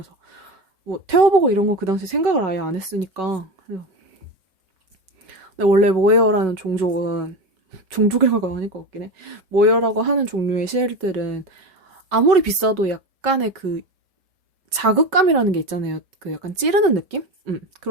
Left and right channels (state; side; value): late; left; 5.3 ms